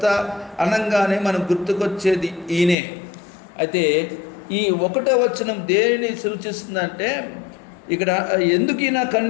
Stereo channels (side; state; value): right; drops out; at 2.8 s